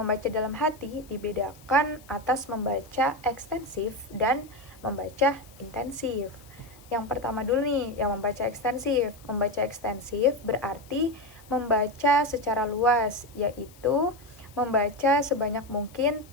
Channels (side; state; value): left; noise; hiss, 25 dB below the sound